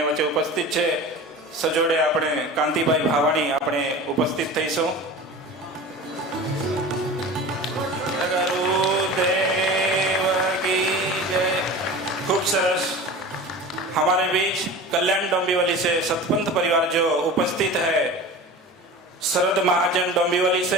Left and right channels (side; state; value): both; normal; correlation 0.35